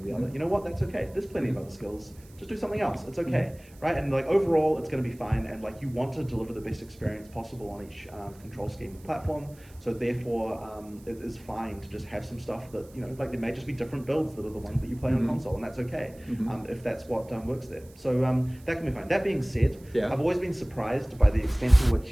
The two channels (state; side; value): noise; right; hiss, 26 dB below the sound